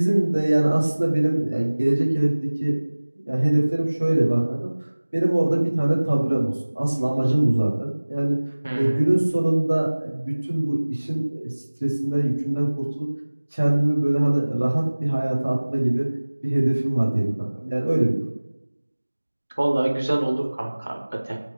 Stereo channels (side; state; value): both; inverted; correlation -1.00